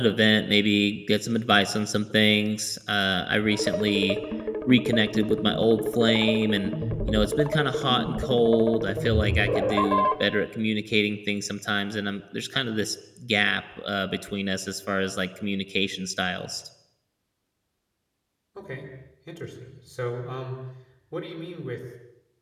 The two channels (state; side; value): identical; both; correlation 1.00